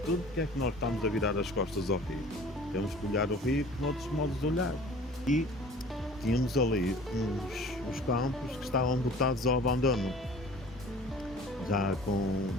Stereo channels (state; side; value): normal; both; correlation 0.46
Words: porque é que nós estamos a virar as costas ao rio? Temos que olhar o rio com outros modos de olhar. E tínhamos ali uns campos que estavam botados ao abandono, já com